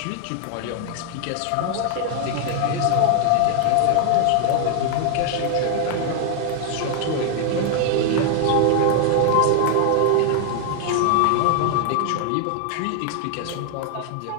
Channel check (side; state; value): both; different; correlation 0.00